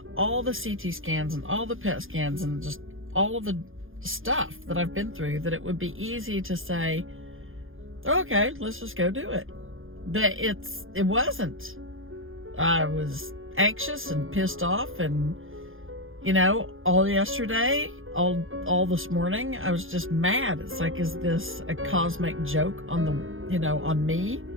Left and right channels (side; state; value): left; late; 0.59 ms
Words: all the CT scans, and all the PET scans, and just all of the stuff that I've been through, that it would be easy to say, okay, let's just go do it. But it wasn't. I was anxious and pissed off, and all yesterday, all this morning, I was just mad. It's like, is this a cosmic joke on on me,